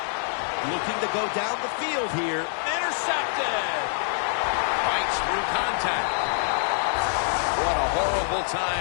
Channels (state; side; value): silent; right; digital silence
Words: Looking to go down the field here. Intercepted. Fights through contact. What a horrible